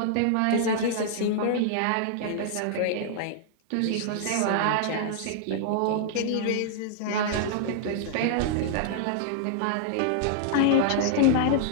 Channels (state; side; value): different; both; correlation -0.01